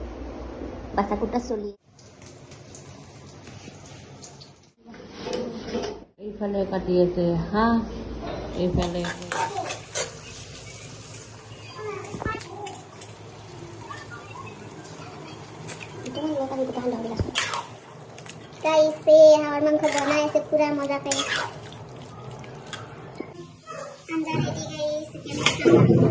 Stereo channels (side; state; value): both; identical; correlation 1.00